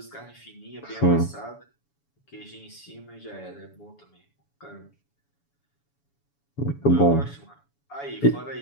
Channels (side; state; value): right; late; 7.1 ms